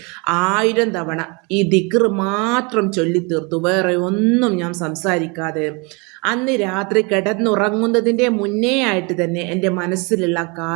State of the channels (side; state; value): left; quieter; 30.1 dB